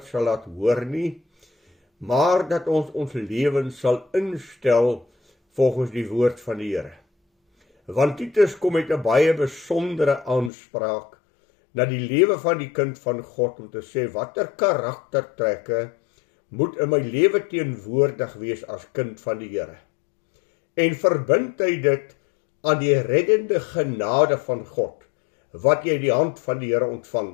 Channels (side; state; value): right; drops out; at 10.5 s